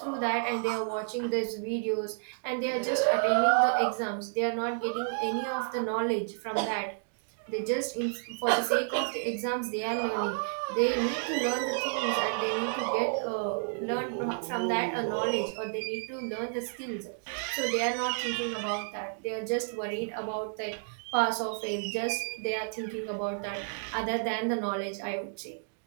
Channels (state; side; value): silent; left; digital silence